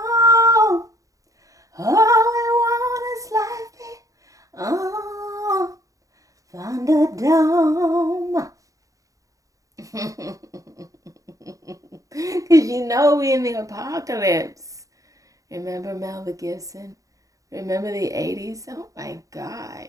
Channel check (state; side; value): late; left; 0.16 ms